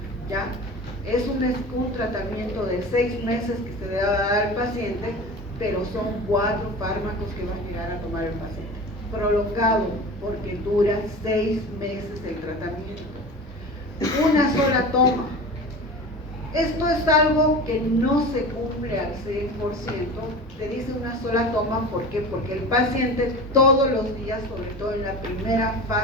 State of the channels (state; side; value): normal; both; correlation 0.33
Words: ¿ya? Es un tratamiento de 6 meses que se debe dar al paciente, pero son 4 fármacos que va a llegar a tomar el paciente. Prolongado, porque dura 6 meses el tratamiento. Una sola toma. Esto es algo que no se cumple al 100%. Se dice una sola toma, ¿por qué? Porque el paciente todos los días, sobre todo en la primera